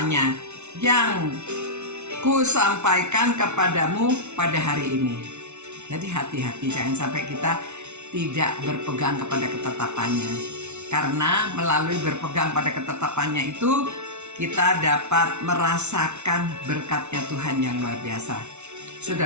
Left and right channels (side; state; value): left; late; 0.82 ms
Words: yang ku sampaikan kepadamu pada hari ini. Jadi hati-hati, jangan sampai kita tidak berpegang kepada ketetapannya. Karena melalui berpegang pada ketetapannya itu kita dapat merasakan berkatnya Tuhan yang luar biasa.